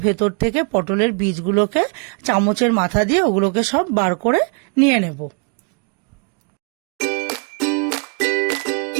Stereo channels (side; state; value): left; quieter; 37.9 dB